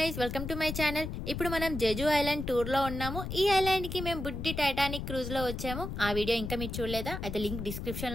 welcome to my channel. ఇప్పుడు మనం Jeju island టూర్లో ఉన్నాము. ఈ ఐలాండ్కి మేము బుడ్డి టైటానిక్ క్రూజ్లో వచ్చాము. ఆ వీడియో ఇంకా మీరు చూడలేదా? అయితే లింక్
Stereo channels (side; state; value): left; noise; rumble, 6 dB below the sound